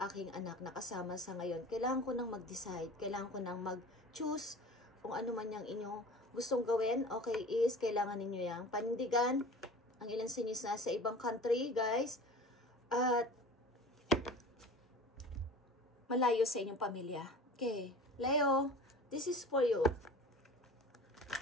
anak na kasama sa ngayon. Kailangan ko nang mag-decide, kailangan ko nang mag-choose kung ano man yung inyong gustong gawin. Okay, is kailangan ninyo yung panindigan. Ang ilan sa inyo sa ibang country, guys, at malayo sa inyong pamilya. Okay, Leo, this is for you.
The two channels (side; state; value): both; normal; correlation 0.39